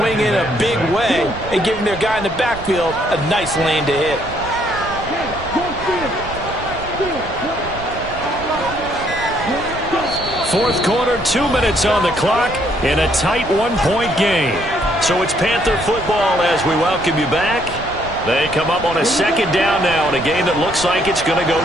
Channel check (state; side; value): noise; right; rumble, 13 dB below the sound